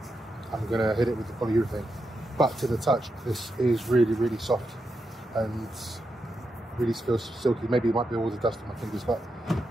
I'm gonna hit it with the polyurethane. But to the touch, this is really, really soft and really feels silky. Maybe it might be all the dust on my fingers, but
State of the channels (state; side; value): normal; both; correlation 0.86